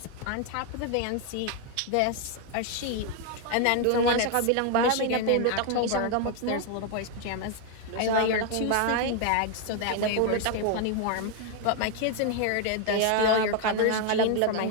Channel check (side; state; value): both; different; correlation 0.01